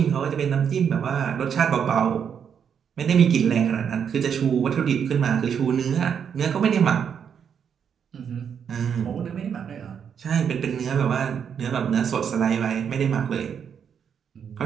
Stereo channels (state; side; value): quieter; left; 7.6 dB